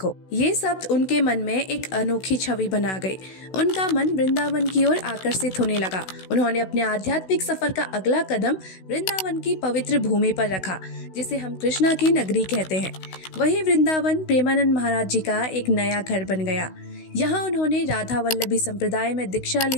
ये शब्द उनके मन में एक अनोखी छवि बना गए। उनका मन वृंदावन की ओर आकर्षित होने लगा। उन्होंने अपने आध्यात्मिक सफर का अगला कदम वृंदावन की पवित्र भूमि पर रखा, जिसे हम कृष्णा की नगरी कहते हैं। वही वृंदावन प्रेमानंद महाराज जी का एक नया घर बन गया। यहाँ उन्होंने राधा वल्लभी संप्रदाय में दीक्षा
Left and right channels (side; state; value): right; late; 16 ms